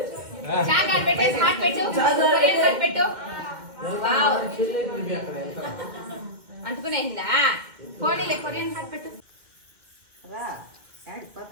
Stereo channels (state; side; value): late; left; 2.2 ms